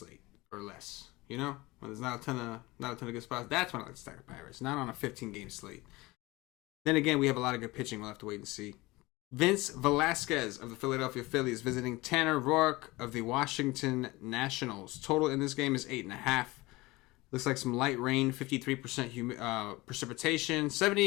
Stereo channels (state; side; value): quieter; right; 21.4 dB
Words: or less. When there's not a ton of good spots, that's when I like to stack the Pirates, not on a 15-game slate. Then again, we have a lot of good pitching. We'll have to wait and see. Vince Velasquez of the Philadelphia Phillies visiting Tanner Roark of the Washington Nationals. Total in this game is 8.5. Looks like some light rain, 53% precipitation,